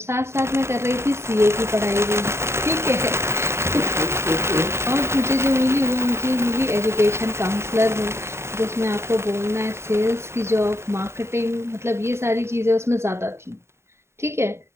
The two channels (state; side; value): late; left; 0.13 ms